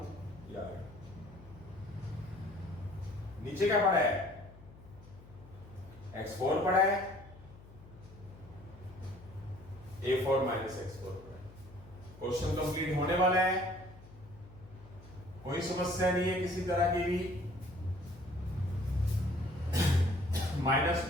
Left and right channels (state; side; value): noise; left; hum, 20 dB below the sound